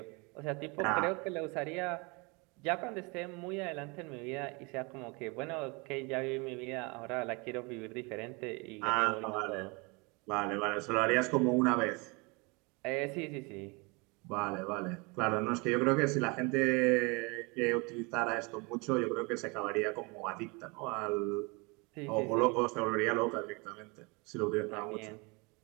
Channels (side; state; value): left; quieter; 28.8 dB